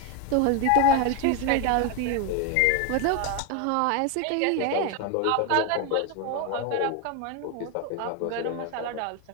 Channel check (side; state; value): both; different; correlation 0.02